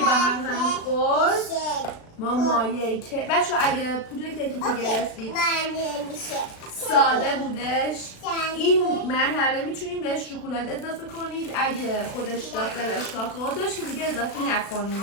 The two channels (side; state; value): right; late; 36 ms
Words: هم خورد ما مایه که بچه اگه پودر کیکی که گرفتید ساده بودش این مرحله میتونیم بهش شکلات اضافه کنید. اگه خودش داخلش کاکائو داشت که دیگه اضافه